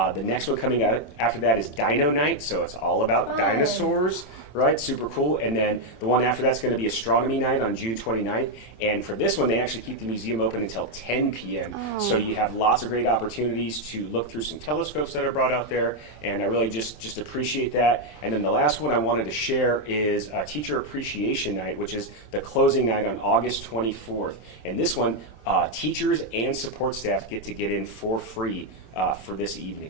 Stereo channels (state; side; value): late; right; 27 ms